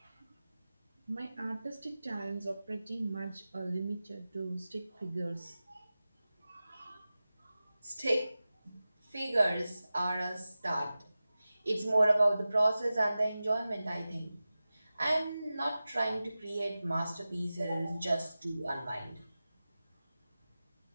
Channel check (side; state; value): both; inverted; correlation -0.95